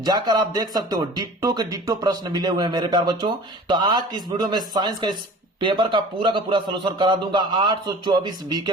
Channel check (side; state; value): both; normal; correlation 0.42